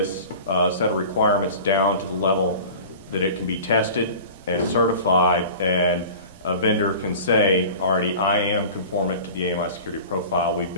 set of requirements down to the level that it can be tested and certified, and a vendor can say, already, I am conformant to the AMI security profile. We've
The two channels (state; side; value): inverted; both; correlation -0.39